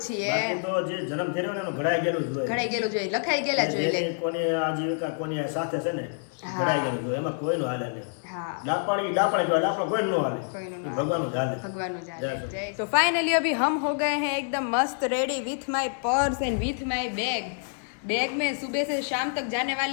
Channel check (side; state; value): right; silent; 60 dB below the other